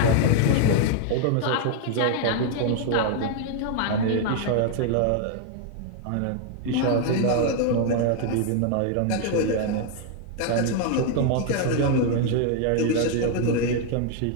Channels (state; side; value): different; both; correlation 0.00